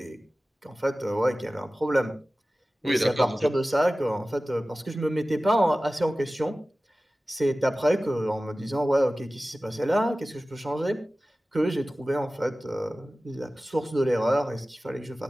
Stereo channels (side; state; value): both; normal; correlation 0.96